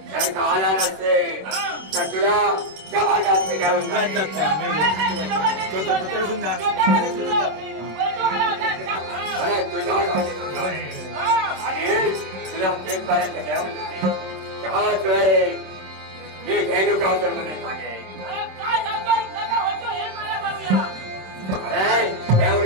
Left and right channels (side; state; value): left; late; 27 ms